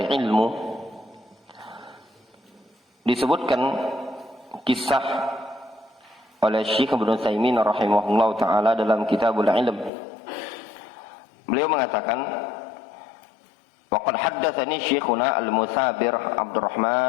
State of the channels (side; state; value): right; drops out; at 9.9 s